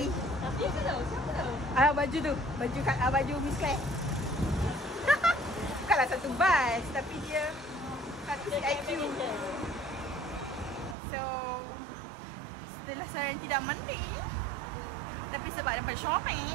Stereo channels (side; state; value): left; drops out; at 11.0 s